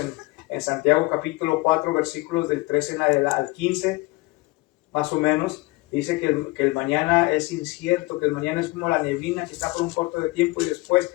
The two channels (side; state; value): right; quieter; 22.5 dB